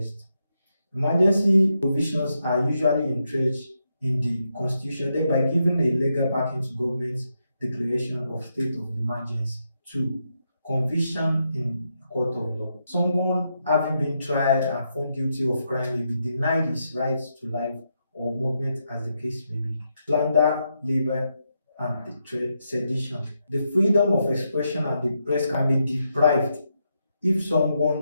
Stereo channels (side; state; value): both; inverted; correlation -0.82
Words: Emergency provisions are usually entrenched in the constitution, thereby giving a legal backing to government's declaration of state of emergency. Two, conviction in court of law. Someone having been tried and found guilty of crime may be denied his rights to life or movement as the case may be. Slander, labor, and sedition. The freedom of expression and the press can be deprived if